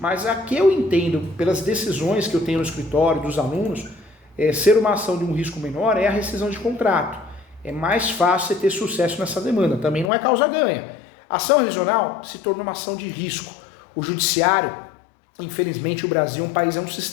a que eu entendo pelas decisões que eu tenho no escritório, dos alunos, ser uma ação de um risco menor é a rescisão de contrato. É mais fácil você ter sucesso nessa demanda, também não é causa-ganha. A ação revisional se torna uma ação de risco. O judiciário, infelizmente o Brasil é um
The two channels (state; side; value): drops out; right; at 10.1 s